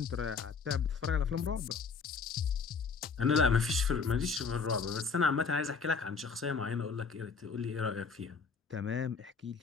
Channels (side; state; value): right; quieter; 5.3 dB